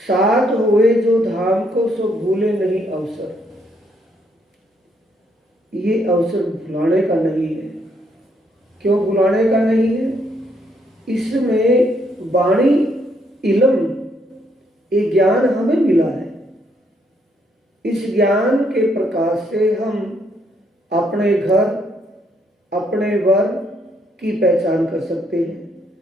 साथ हुए जो धाम को सो भूले नहीं अवसर। ये अवसर भुलाने का नहीं है। क्यों भुलाने का नहीं है? इसमें वाणी इल्म, ये ज्ञान हमें मिला है। इस ज्ञान के प्रकाश से हम अपने घर, अपने वर की पहचान कर सकते हैं,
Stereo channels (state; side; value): normal; both; correlation 0.72